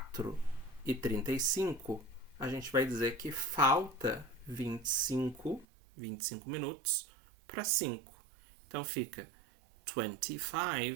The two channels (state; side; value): drops out; left; at 5.7 s